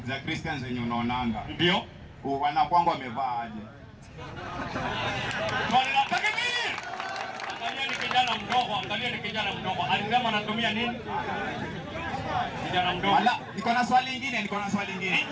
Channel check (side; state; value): both; identical; correlation 1.00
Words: Christians zenye unaonanga. Ndio. Wanakuanga wamevaa aje? Swali la takbir. Angalia ni kijana mdogo, angalia ni kijana mdogo. Alisema anatumia nini? Kijana mdogo. Wala, niko na swali lingine.